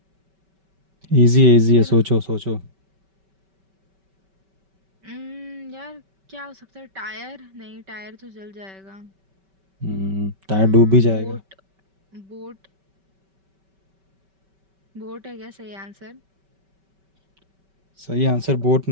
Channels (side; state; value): left; late; 5.2 ms